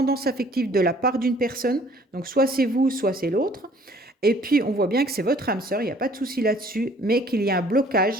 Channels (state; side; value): normal; both; correlation 0.56